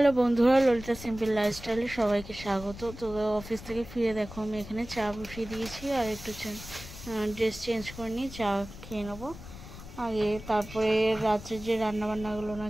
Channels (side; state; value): left; noise; rumble, 14 dB below the sound